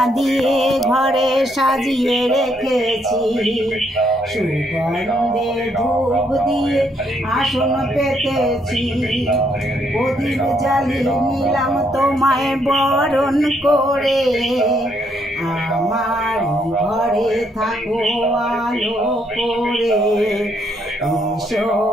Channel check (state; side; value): normal; both; correlation 0.72